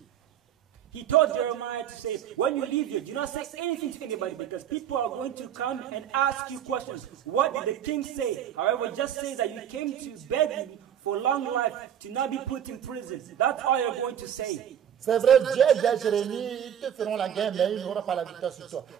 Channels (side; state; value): left; quieter; 9.7 dB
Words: He told Jeremiah to say, when you leave here, do not say anything to anybody because people are going to come and ask you questions. What did the king say? However, just say that you came to beg me for long life to not be put in prison. That's all you're going to say. C'est vrai, Dieu dit à Jérémie, ils te feront la guerre, mais ils n'auront pas la victoire sur toi.